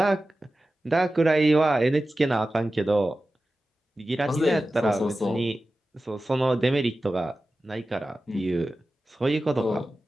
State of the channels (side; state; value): both; normal; correlation 0.94